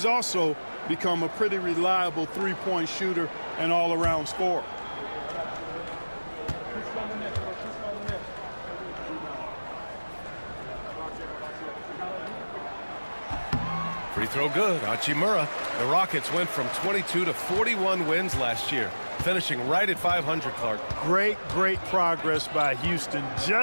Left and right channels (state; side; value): inverted; both; correlation -1.00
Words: also become a pretty reliable 3-point shooter and all-around scorer. Free throw good. Hachimura. The Rockets went from 22 to 41 wins last year, finishing right at 500, Clark. Great progress by Houston.